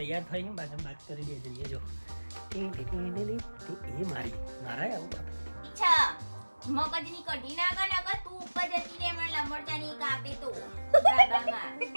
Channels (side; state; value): both; inverted; correlation -1.00